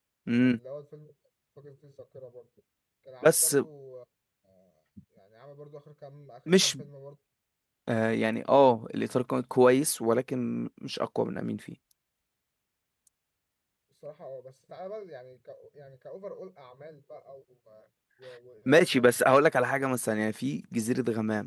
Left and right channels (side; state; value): both; identical; correlation 1.00